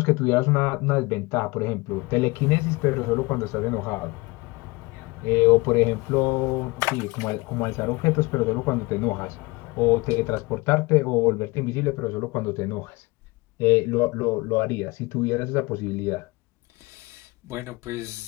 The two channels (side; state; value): right; quieter; 23.9 dB